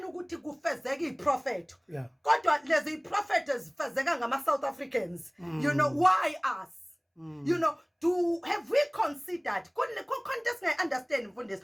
ukuthi kufezeke iprofeto. Kodwa lezi prophet ezifezeka ngama-South Africans. Why us? Have we considered? Contest I understand mfundisi.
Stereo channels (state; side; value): identical; both; correlation 1.00